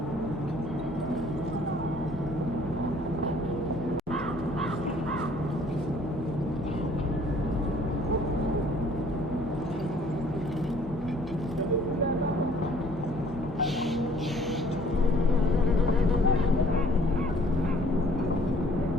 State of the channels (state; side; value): normal; both; correlation 0.58